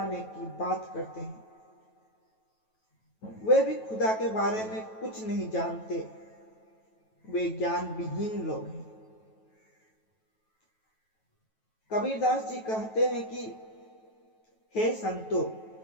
की बात करते हैं। वे भी खुदा के बारे में कुछ नहीं जानते, वे ज्ञान विहीन लोग हैं। कबीरदास जी कहते हैं कि हे संतो,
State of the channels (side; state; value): right; late; 9.2 ms